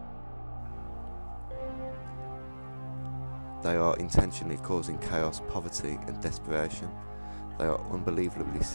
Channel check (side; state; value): both; inverted; correlation -1.00